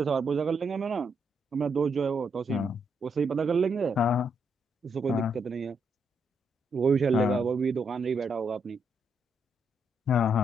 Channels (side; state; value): both; normal; correlation 0.77